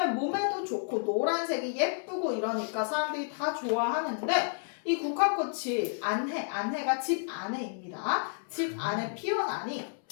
몸에도 좋고 노란색이 예쁘고 이러니까 사람들이 다 좋아하는데 이 국화꽃이 안해가 집 안에입니다. 집 안에 피어나니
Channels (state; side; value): silent; right; 57 dB below the other